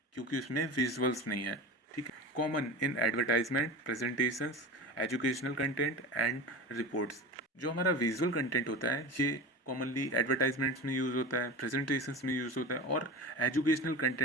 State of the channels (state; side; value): normal; both; correlation 0.30